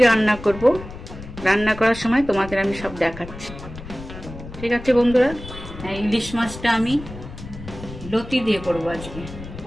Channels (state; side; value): noise; left; rumble, 13 dB below the sound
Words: রান্না করব, রান্না করার সময় তোমাদের আমি সব দেখাচ্ছি। ঠিক আছে বন্ধুরা, ইলিশ মাছটা আমি লতি দিয়ে করব আজকে।